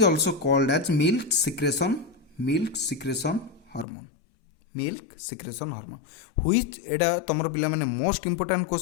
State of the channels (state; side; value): drops out; right; at 3.9 s